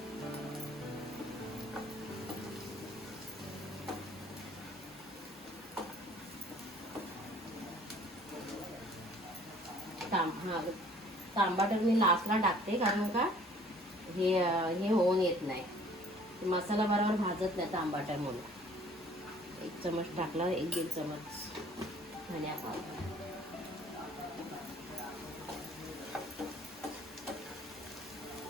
तांबाटर मी लास्टला टाकते कारण का हे होऊन येत नाही, मसाला बरोबर भाजत नाही तांबाटर म्हणून. 1 चमच टाकला, 1-1.5 चमच धनिया पावडर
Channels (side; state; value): both; normal; correlation 0.54